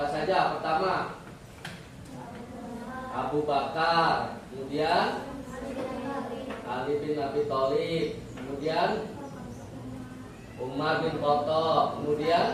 saja? Pertama Abu Bakar, kemudian Ali bin Abi Thalib, kemudian Umar bin Khattab,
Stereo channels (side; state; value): both; identical; correlation 1.00